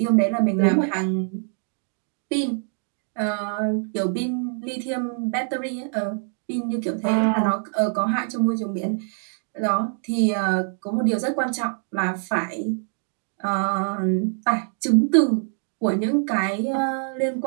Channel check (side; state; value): left; silent; 59 dB below the other